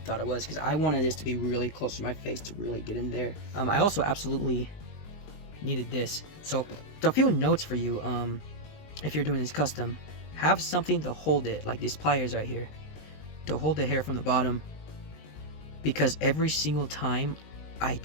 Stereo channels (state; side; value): late; right; 20 ms